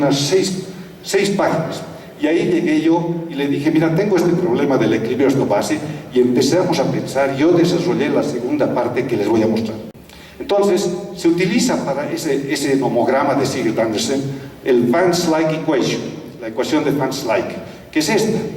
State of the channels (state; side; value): identical; both; correlation 1.00